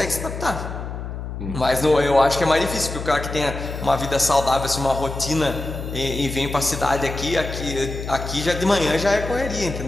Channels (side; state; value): left; noise; hum, 7 dB below the sound